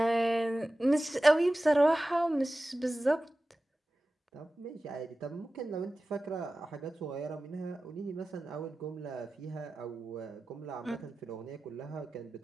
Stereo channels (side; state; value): both; normal; correlation 0.95